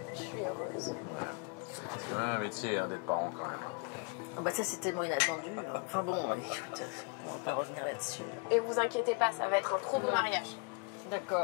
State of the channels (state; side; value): quieter; right; 33.5 dB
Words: Je suis heureuse. C'est quand même un métier hein, d'être parent, quand même. hein. Ah bah ça, c'est tellement inattendu. Enfin bon, écoute, on va pas revenir là-dessus. Et vous inquiétez pas, ça va être un trop beau mariage.